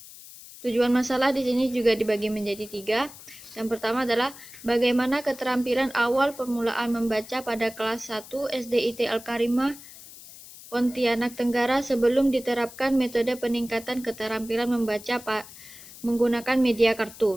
di sini juga dibagi menjadi 3. Yang pertama adalah bagaimana keterampilan awal permulaan membaca pada kelas 1 SD ITL Karimah Pontianak Tenggara sebelum diterapkan metode peningkatan keterampilan membaca menggunakan media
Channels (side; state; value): left; noise; hiss, 17 dB below the sound